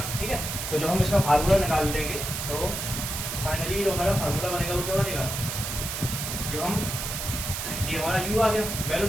ठीक है। तो जब हम इसका फार्मूला निकाल लेंगे तो फाइनली जो हमारा फार्मूला बनेगा वो क्या बनेगा, जब हम ये हमारा u आ गया,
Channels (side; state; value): right; noise; hiss, 4 dB below the sound